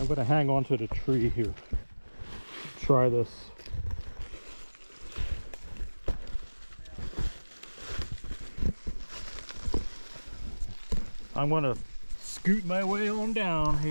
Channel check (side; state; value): both; inverted; correlation -1.00